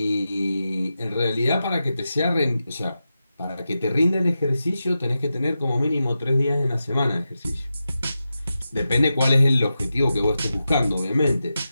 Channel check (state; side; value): inverted; both; correlation -0.90